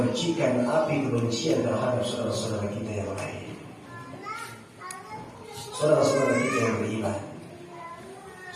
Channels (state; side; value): identical; both; correlation 1.00